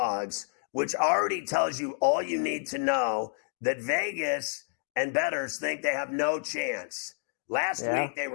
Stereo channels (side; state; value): right; silent; digital silence